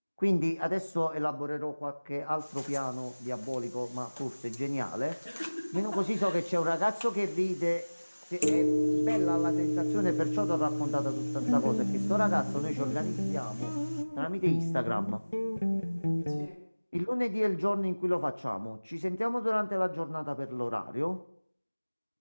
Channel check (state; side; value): inverted; both; correlation -1.00